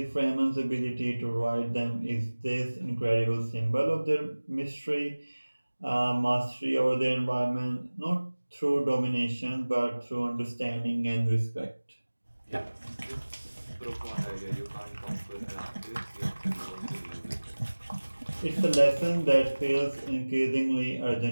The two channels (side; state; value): both; inverted; correlation -1.00